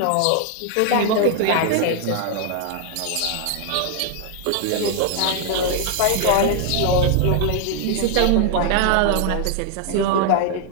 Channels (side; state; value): both; different; correlation 0.00